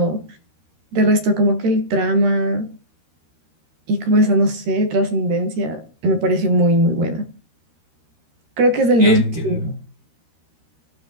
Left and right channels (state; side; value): late; left; 13 ms